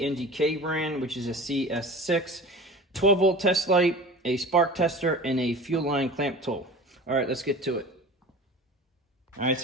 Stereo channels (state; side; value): normal; both; correlation 0.38